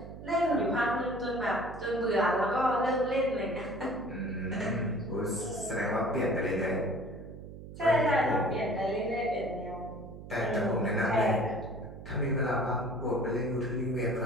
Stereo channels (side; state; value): right; noise; hum, 13 dB below the sound